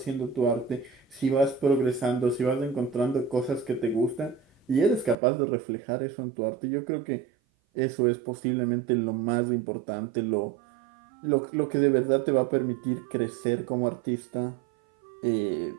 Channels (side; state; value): left; drops out; at 5.2 s